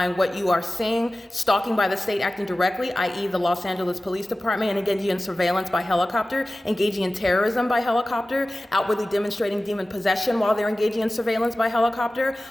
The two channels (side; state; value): both; normal; correlation 0.96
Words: what you are seeing: stalking by the state acting directly, i.e. the Los Angeles Police Department, and engaging in surveillance by helicopter, engaging in terrorism by helicopter, outwardly demonstrating demon possession while they're engaging in surveillance by helicopter,